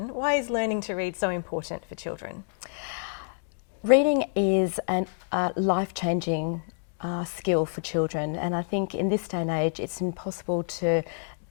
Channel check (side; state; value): right; silent; digital silence